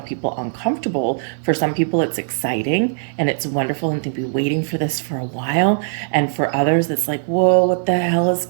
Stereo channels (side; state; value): left; silent; digital silence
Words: people uncomfortable. For some people, it's exciting and it's wonderful, and they've been waiting for this for a while. And for others, it's like, whoa, what the hell is